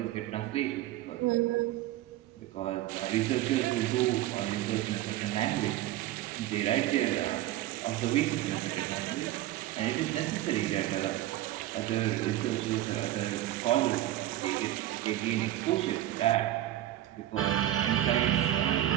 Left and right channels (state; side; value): quieter; left; 14.2 dB